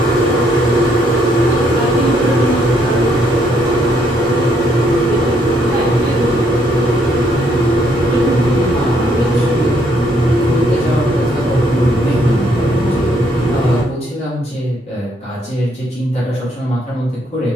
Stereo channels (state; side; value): normal; both; correlation 0.70